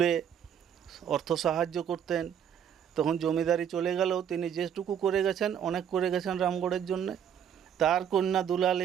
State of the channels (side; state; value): left; quieter; 8.7 dB